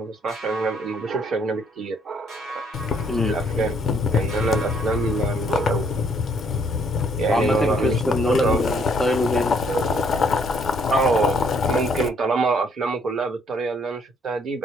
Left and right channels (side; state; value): both; normal; correlation 0.66